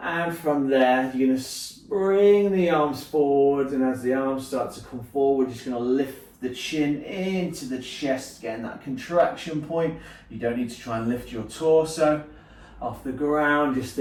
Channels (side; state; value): both; identical; correlation 1.00